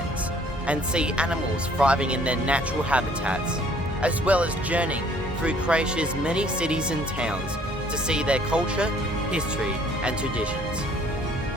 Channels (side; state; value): both; normal; correlation 0.59